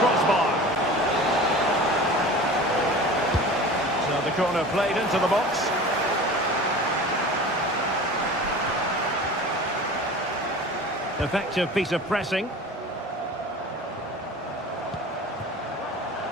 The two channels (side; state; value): both; normal; correlation 0.38